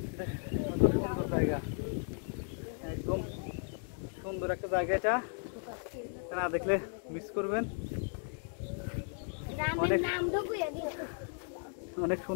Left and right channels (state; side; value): silent; right; 54 dB below the other